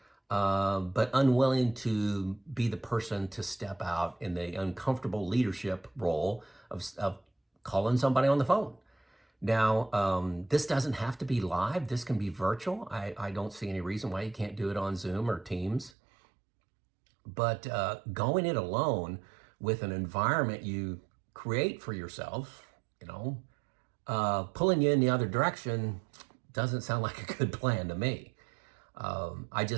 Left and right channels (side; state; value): left; drops out; at 15.9 s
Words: but unwilling to be the person to step out in the uncomfortable leadership role of calling somebody on the phone. Now, this doesn't have to be live. This can be virtual. I don't see any reason why you can't do it on Zoom or Teams. But going it alone with an environment you create for yourself, pulling you in the other direction doesn't sound like a good plan to me. I